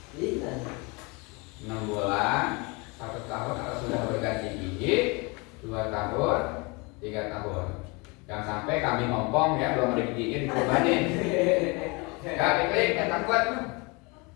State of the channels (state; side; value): quieter; right; 28.3 dB